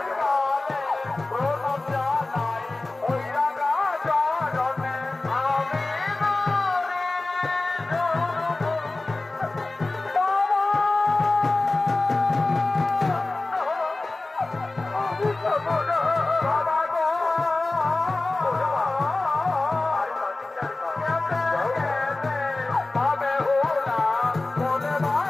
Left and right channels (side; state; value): right; quieter; 3.1 dB